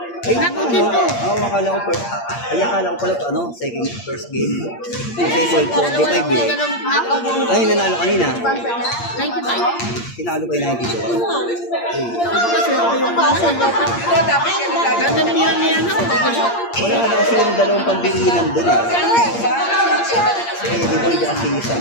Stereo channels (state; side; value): late; right; 8.6 ms